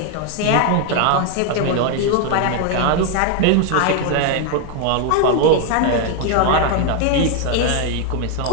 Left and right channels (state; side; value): different; both; correlation 0.00